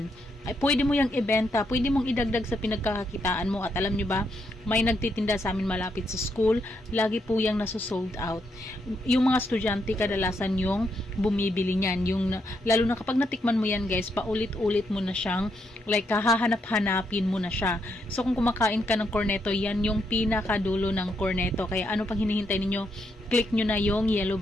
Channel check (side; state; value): both; normal; correlation 0.78